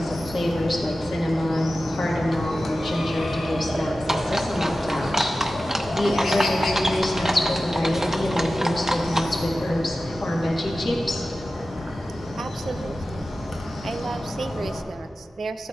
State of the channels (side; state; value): both; normal; correlation 0.94